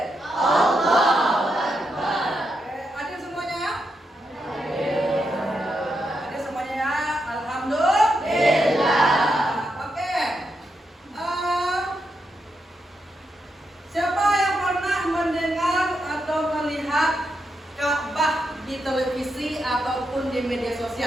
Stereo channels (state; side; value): normal; both; correlation 0.83